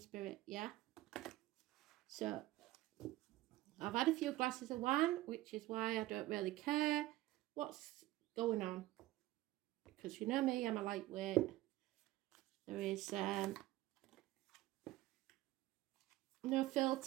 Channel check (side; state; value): left; quieter; 16.8 dB